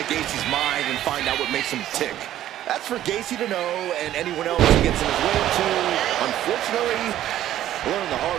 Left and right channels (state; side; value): quieter; left; 12.6 dB